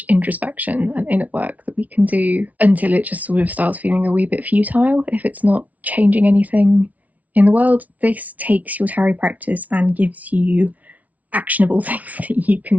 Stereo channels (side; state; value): left; late; 0.071 ms